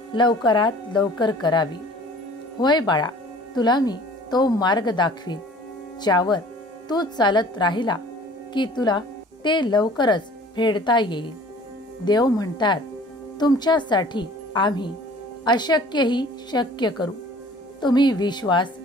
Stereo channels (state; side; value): normal; both; correlation 0.49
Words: लवकरात लवकर करावी. होय बाळा, तुला मी तो मार्ग दाखवीन ज्यावर तू चालत राहिला की तुला ते लवकरच फेडता येईल. देव म्हणतात तुमच्यासाठी आम्ही अशक्यही शक्य करू. तुम्ही विश्वास